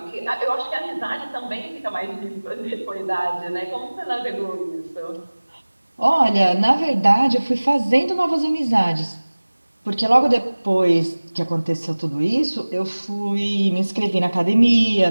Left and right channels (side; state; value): both; inverted; correlation -1.00